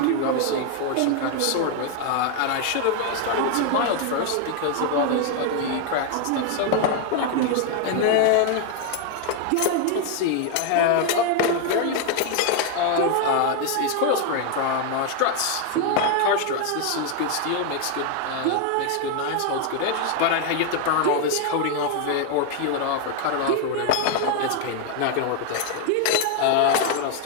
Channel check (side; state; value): both; different; correlation 0.01